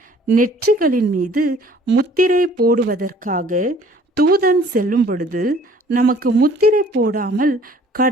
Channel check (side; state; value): both; normal; correlation 0.54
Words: நெற்றிகளின் மீது முத்திரை போடுவதற்காக தூதன் செல்லும் பொழுது நமக்கு முத்திரை போடாமல்